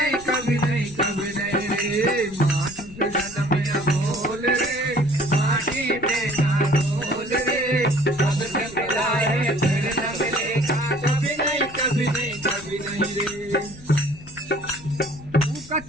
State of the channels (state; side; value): noise; left; rumble, 19 dB below the sound